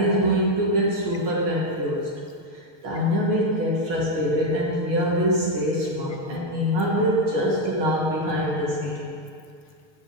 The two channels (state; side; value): late; left; 6.6 ms